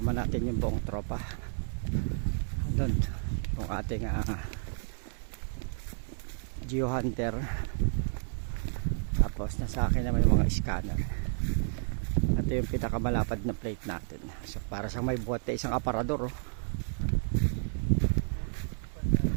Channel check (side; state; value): left; silent; 57 dB below the other